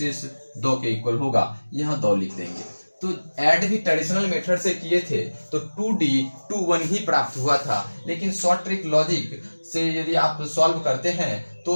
2 के इक्वल होगा, यहाँ 2 लिख देंगे। तो ऐड भी ट्रेडिशनल मेथड से किए थे तो 2D 21 ही प्राप्त हुआ था, लेकिन शॉर्ट ट्रिक लॉजिक से यदि आप सॉल्व करते हैं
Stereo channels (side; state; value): both; inverted; correlation -1.00